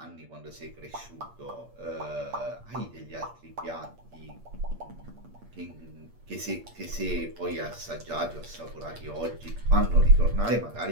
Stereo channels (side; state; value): left; late; 8.6 ms